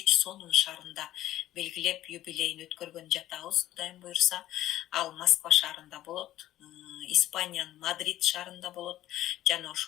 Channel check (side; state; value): right; quieter; 14.0 dB